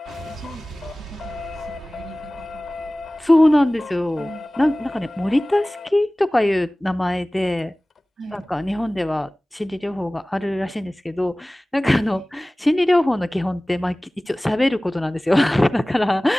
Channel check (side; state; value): both; normal; correlation 0.98